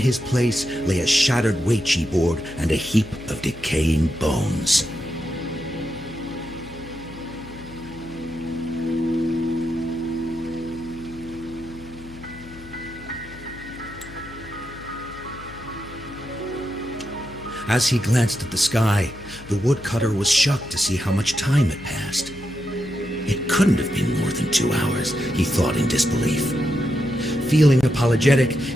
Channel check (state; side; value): noise; left; hum, 18 dB below the sound